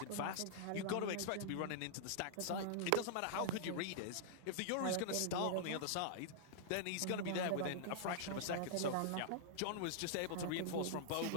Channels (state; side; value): different; both; correlation -0.01